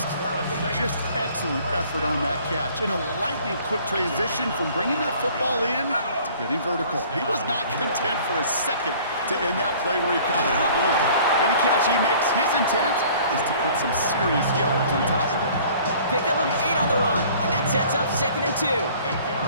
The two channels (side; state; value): both; inverted; correlation -0.52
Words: Just excellent effort on that catch. And a lightning quick transition from bringing that football in to getting vertical. He was not content for a second to end that play where he caught it. Any catch he makes, his intent is to put some serious yards on top of it. Pickup of 8 on the run, and that sets up 2nd and 2.